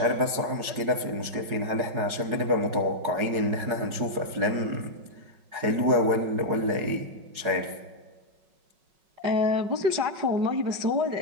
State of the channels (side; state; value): left; late; 5.4 ms